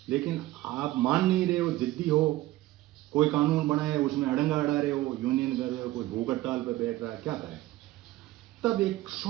लेकिन आप मान नहीं रहे हो, जिद्दी हो, कोई कानून बनाए उसमें अड़ंगा अड़ा रहे हो, यूनियन कर रहे हो, कोई भूख हड़ताल पे बैठ रहा है, क्या करें? तब एक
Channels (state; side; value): quieter; left; 16.6 dB